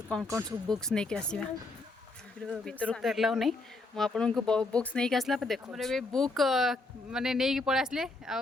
कौन कौन सब बुक्स नहीं के आसीबा भीतर तो एलाउ नहीं मुझे बुक्स नहीं आसला देखो बुक माने नहीं पड़े आसले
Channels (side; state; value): right; quieter; 3.2 dB